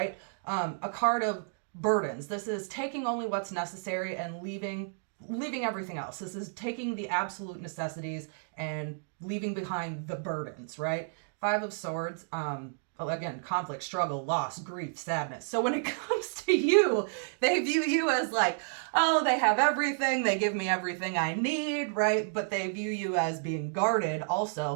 A card of burdens. This is taking only what's necessary and leaving everything else. This is taking the absolute necessities and leaving behind the burdens, right? Five of Swords, again, conflict, struggle, loss, grief, sadness. So when it comes to you, they view you as like, oh, they have everything, they give me everything I need, right? But they view you as being guarded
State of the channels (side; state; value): left; silent; digital silence